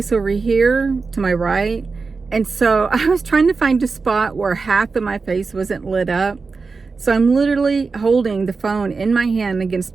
over here to my right, and so I was trying to find a spot where half of my face wasn't lit up. So I'm literally holding the phone in my hand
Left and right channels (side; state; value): left; quieter; 4.4 dB